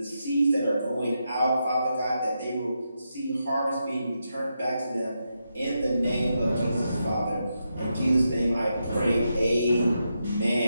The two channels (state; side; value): inverted; both; correlation -0.85